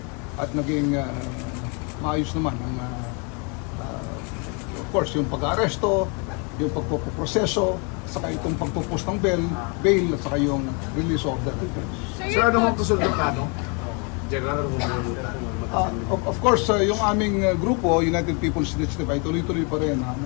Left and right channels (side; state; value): right; quieter; 34.3 dB